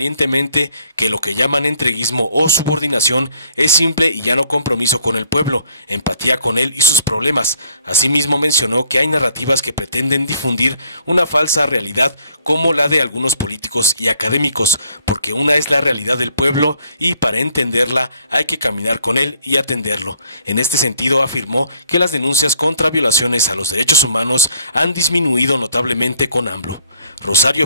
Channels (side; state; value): both; inverted; correlation -0.64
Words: que lo que llaman entreguismo o subordinación es simple y llano compromiso con el pueblo, empatía con él y sus problemas. Asimismo mencionó que hay narrativas que pretenden difundir una falsa realidad como la de algunos políticos y académicos, porque una es la realidad del pueblo y para entenderla hay que caminar con él y atenderlo. En este sentido afirmó que las denuncias contra violaciones a los derechos humanos han disminuido notablemente con AMLO.